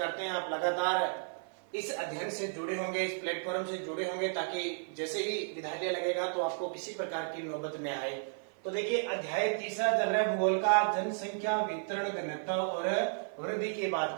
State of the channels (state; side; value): silent; left; 55 dB below the other